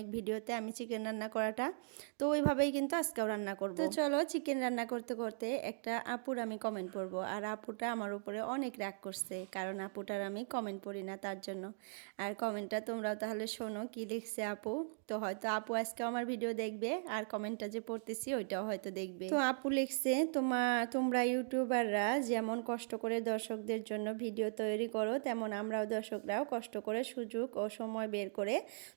ভিডিওতে আমি চিকেন রান্না করাটা, তো ওইভাবেই কিন্তু আজকেও রান্না করব। তো চলো চিকেন রান্না করতে করতে একটা আপুর আমি কমেন্ট পড়বো, আর আপুটা আমার উপরে অনেক রাগ করছে, কারণ আপুটার আমি কমেন্ট পড়ি না তার জন্য। আর কমেন্টটা তোমরাও তাহলে শোনো কি লিখছে আপু। তো হয়তো আপু আজকে আমার ভিডিও দেখবে, আর কমেন্টটা যে পড়তেছি ওইটাও হয়তো দেখবে। তো আপু লিখছে, তোমরা ইউটিউবাররা যেমন কষ্ট করে দর্শকদের জন্য ভিডিও তৈরি করো, তেমন আমরাও দর্শকরাও কষ্ট করে সুযোগ ও সময় বের করে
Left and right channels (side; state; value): left; silent; digital silence